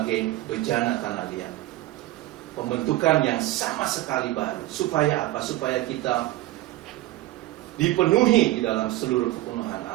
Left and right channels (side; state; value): left; quieter; 16.8 dB